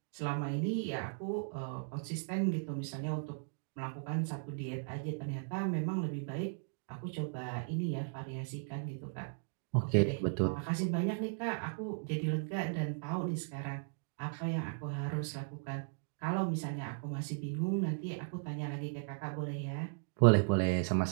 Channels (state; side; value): silent; left; digital silence